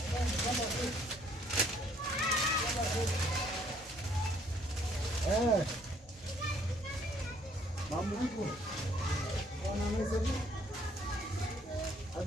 Mambo vipi? Wana meza vipi?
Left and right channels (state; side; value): normal; both; correlation 0.64